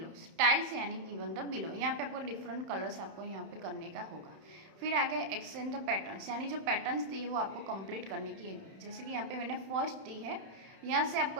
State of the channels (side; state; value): left; late; 31 ms